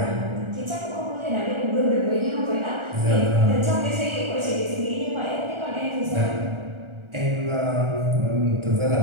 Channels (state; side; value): late; left; 1.4 ms